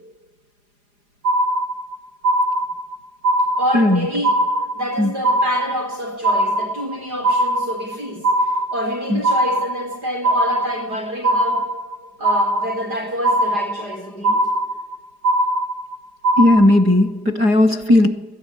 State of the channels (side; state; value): left; late; 4.9 ms